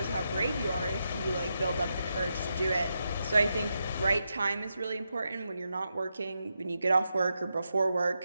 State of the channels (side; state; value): both; inverted; correlation -0.85